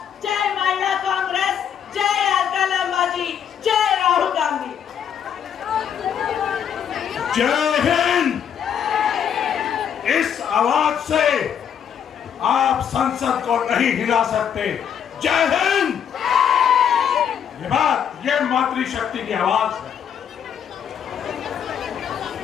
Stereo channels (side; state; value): right; quieter; 8.5 dB